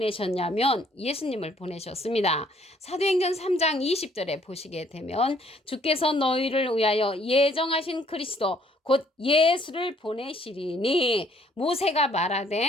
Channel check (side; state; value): both; normal; correlation 0.63